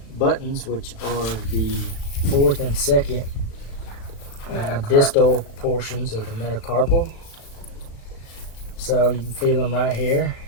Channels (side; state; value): right; late; 37 ms